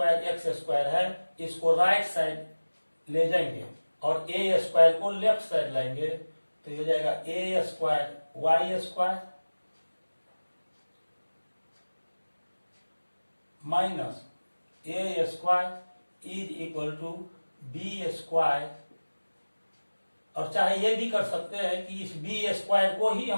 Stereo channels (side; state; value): both; inverted; correlation -1.00